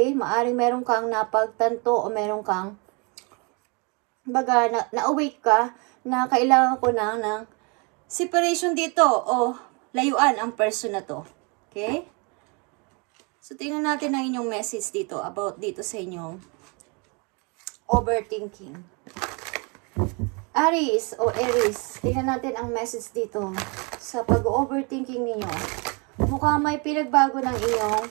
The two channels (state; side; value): quieter; left; 32.0 dB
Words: maaring meron kang napagtanto o meron kang, kumbaga na-awake ka na kailangan ko na ng separation dito o layuan ang person na to. Okay? So, tingnan natin ang inyong message dito about dito sa inyong overthinking. Aries o Aries, tingnan natin ang message dito sa pag-overthinking ninyo. Mukhang may pinagbago ng iyong